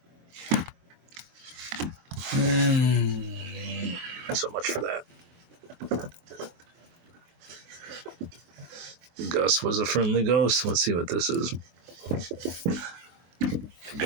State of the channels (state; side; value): late; left; 24 ms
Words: So much for that. Gus was a friendly ghost. Let's see what this is. The